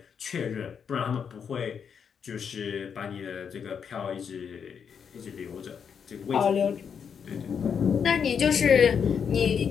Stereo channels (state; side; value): quieter; right; 7.0 dB